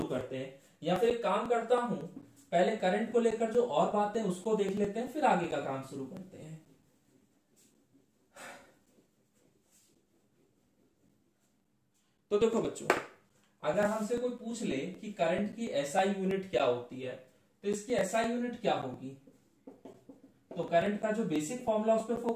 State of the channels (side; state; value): both; identical; correlation 1.00